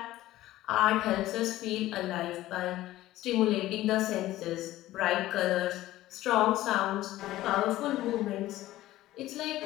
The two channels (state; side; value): quieter; right; 15.6 dB